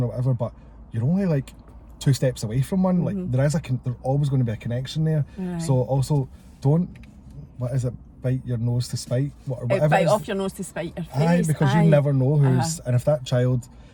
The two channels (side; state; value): both; identical; correlation 1.00